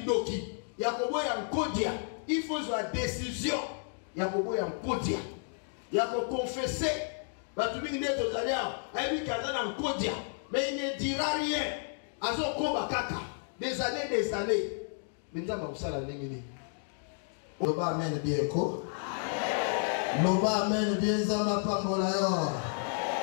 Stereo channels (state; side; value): silent; right; 57 dB below the other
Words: Yakobo ya nkodia. Il faut avoir décision. Yakobo ya nkodia. Yako confesser. Batumi ne tozalia, ayi kazana nkodia, mais il ne dira rien. Azo koba kaka. Des années. Minzamba usala ningini. Loba amen bien ko. Loba amen bien zamba pambola yo.